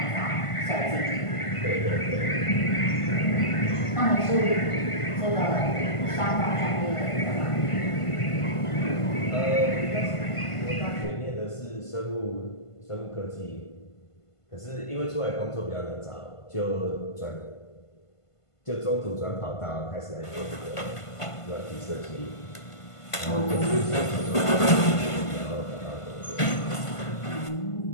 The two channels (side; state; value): right; late; 1.5 ms